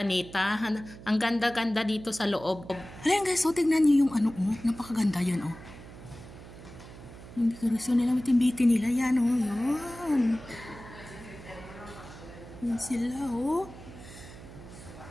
Ang ganda-ganda dito sa loob. Ayan guys, so tignan nyo yung ano, napakaganda yan o. Yung dekorasyon nila, bitin-bitin nila. Yan o, yan. Yan sila o.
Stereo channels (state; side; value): noise; right; hum, 16 dB below the sound